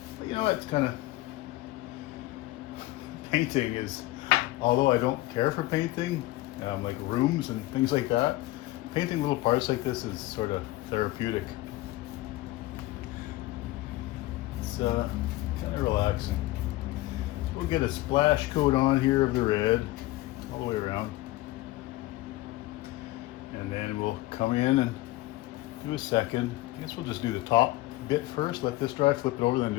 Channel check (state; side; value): quieter; right; 17.8 dB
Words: But you know, it's kind of, painting is, although I don't care for painting, like rooms and things like that, painting little parts like this is sort of therapeutic. It's kind of relaxing. We'll get a splash coat on here of the red all the way around, and then we'll come in and do a second. I guess we'll just do the top bit first, let this dry, flip it over, then